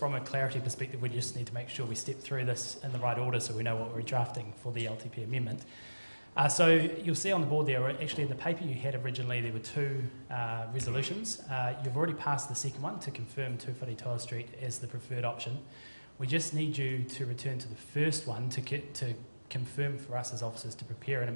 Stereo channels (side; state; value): both; inverted; correlation -1.00